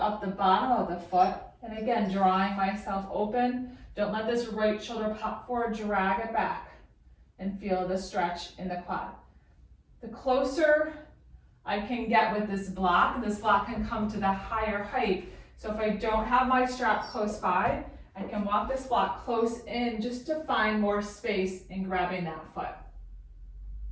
the bottom of the foot, and again, drawing myself open. Don't let this right shoulder pop forward, drag it back, and feel the stretch in the quad. The closer I can get with this block can come to the higher height. So if I don't have my strap close by, I can walk this block close in just to find more space in grabbing that foot.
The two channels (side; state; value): both; identical; correlation 1.00